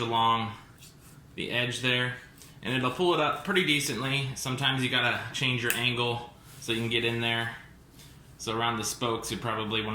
the edge there, and it'll pull it up pretty decently. Sometimes you got to change your angle so you can get in there. So around the spokes, you probably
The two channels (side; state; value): both; identical; correlation 1.00